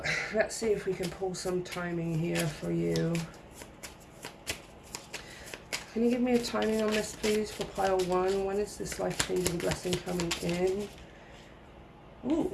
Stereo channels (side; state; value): both; identical; correlation 1.00